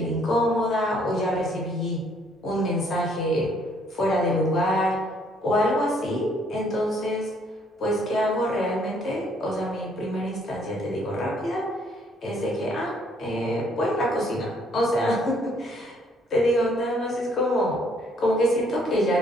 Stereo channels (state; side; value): normal; both; correlation 0.65